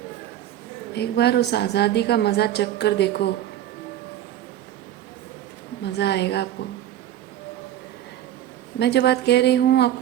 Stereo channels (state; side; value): quieter; left; 12.0 dB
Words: एक बार उस आज़ादी का मज़ा चख कर देखो, मज़ा आएगा आपको। मैं जो बात कह रही हूँ